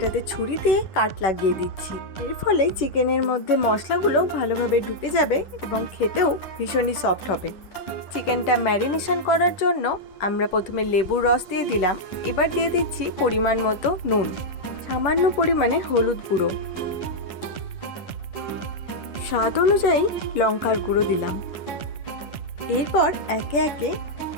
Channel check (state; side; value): late; right; 10 ms